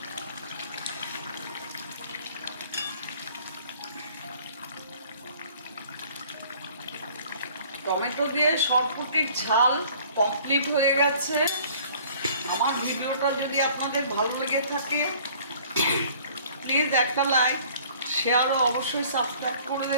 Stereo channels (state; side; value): inverted; both; correlation -0.53